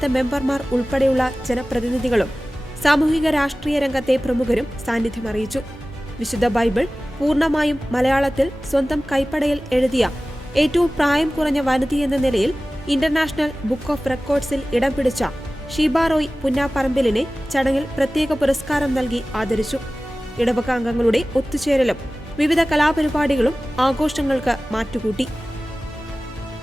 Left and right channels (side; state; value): both; normal; correlation 0.97